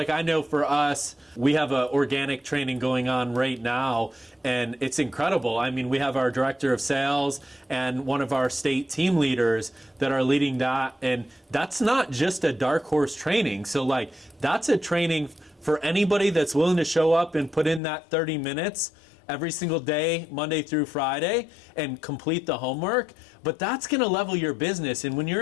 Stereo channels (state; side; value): drops out; right; at 17.8 s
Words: know for us, we have an organic training going on right now, and it's incredible. I mean, we have our director of sales and one of our state team leaders that are leading that, and that's not just a Dark Horse training. So that's a training for anybody that's willing to show up and put in that 30 minutes every single day, Monday through Friday, and complete the homework. But that's going to level your business. And when